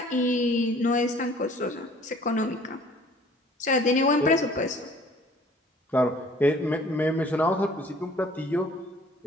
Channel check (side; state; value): both; normal; correlation 0.53